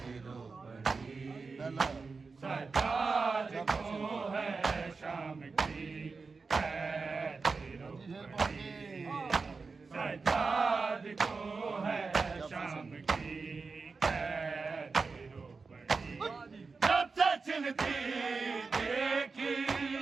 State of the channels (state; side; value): quieter; left; 4.4 dB